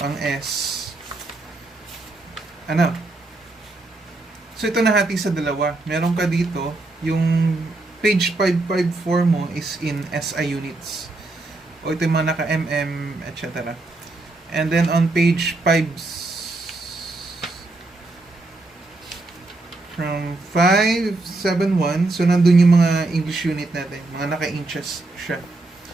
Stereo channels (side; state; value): left; quieter; 3.1 dB